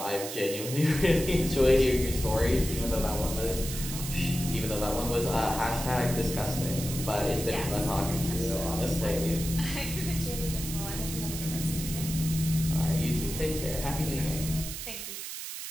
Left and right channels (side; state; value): right; noise; hiss, 7 dB below the sound